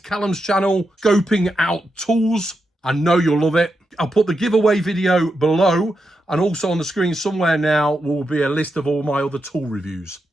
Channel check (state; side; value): normal; both; correlation 0.86